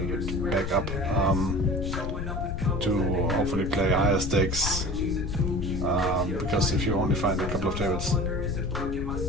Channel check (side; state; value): left; noise; rumble, 4 dB below the sound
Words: bit back up, to hopefully play higher stakes, because if you only find a couple of tables,